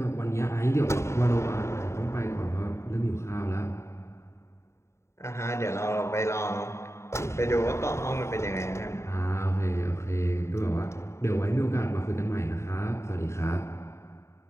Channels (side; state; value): right; late; 0.13 ms